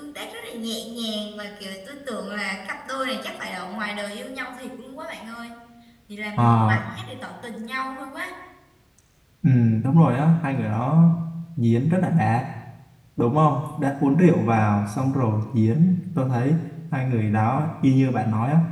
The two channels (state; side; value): identical; both; correlation 1.00